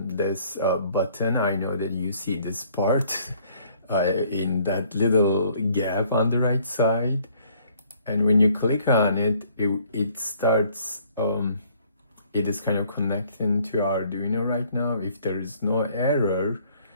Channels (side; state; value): both; inverted; correlation -0.61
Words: this button. I know that you see this part in that little gap on the right side. And when you click on it, it starts, it is kind of connecting to Arduino right now. If there is no error,